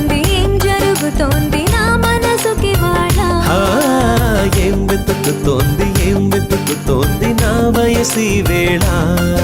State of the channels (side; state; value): both; identical; correlation 1.00